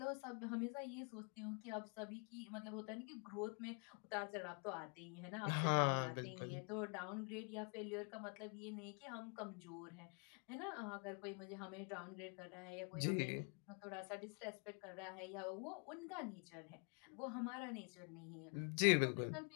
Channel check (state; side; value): quieter; right; 37.6 dB